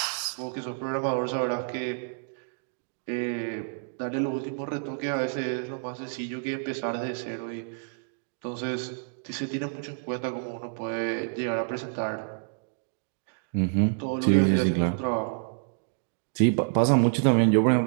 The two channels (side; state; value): left; silent; digital silence